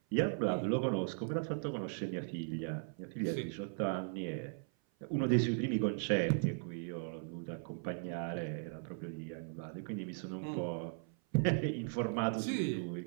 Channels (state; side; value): silent; left; 53 dB below the other